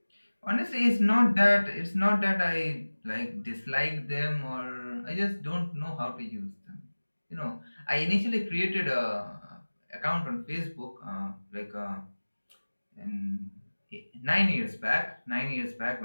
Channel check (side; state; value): both; inverted; correlation -1.00